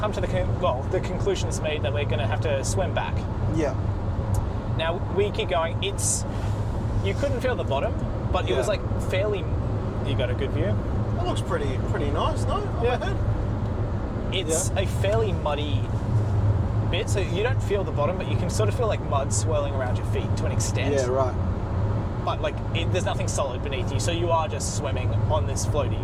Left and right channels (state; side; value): identical; both; correlation 1.00